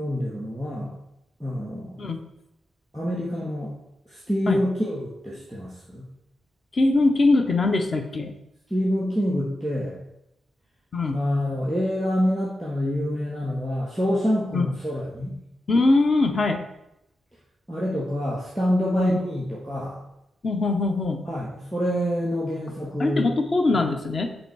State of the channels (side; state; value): both; normal; correlation 0.90